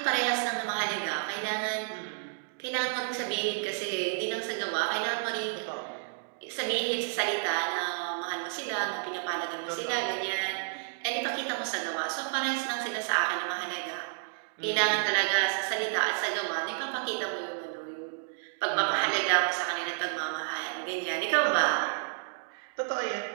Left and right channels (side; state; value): left; silent; digital silence